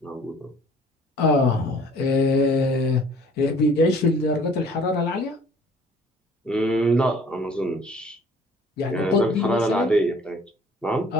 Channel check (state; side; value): normal; both; correlation 0.53